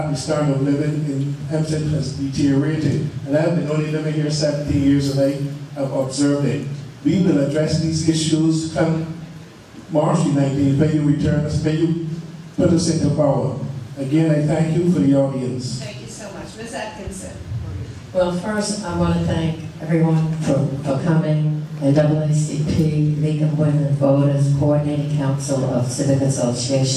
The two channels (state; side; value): identical; both; correlation 1.00